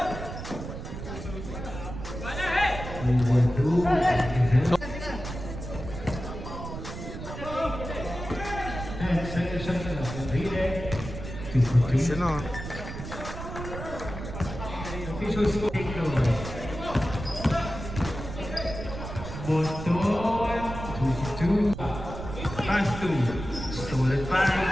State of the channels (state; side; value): noise; right; rumble, 9 dB below the sound